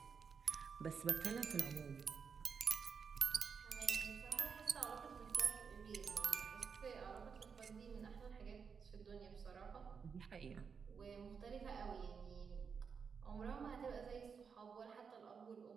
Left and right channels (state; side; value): quieter; left; 6.1 dB